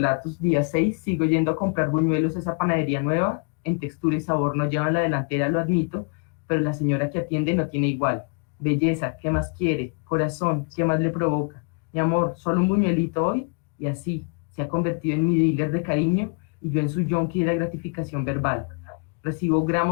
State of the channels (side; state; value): right; quieter; 36.1 dB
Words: Día 6, sigo yendo a comprar buñuelos a esa panadería nueva, en textura y sabor no llevan la delantera, lo admito, pero la señora que atiende no tiene igual. Belleza, ¿qué más quiere? Corazón, ¿qué más le provoca? Mi amor, solo un buñuelito hoy, y así se ha convertido en mi dealer de cariño y yo en su yonki de la gratificación verbal. Recibo